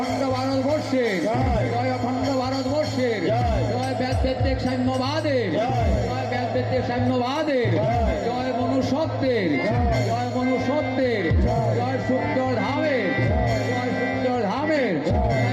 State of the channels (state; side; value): identical; both; correlation 1.00